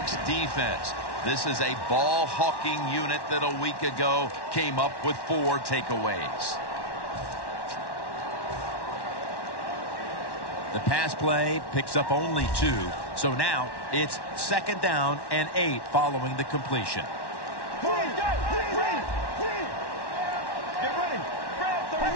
defense. This is a ball-hawking unit that a week ago came up with 4 takeaways. The pass play picks up only 2. So now it's 2nd down and 8 following the completion.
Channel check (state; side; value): late; right; 1.1 ms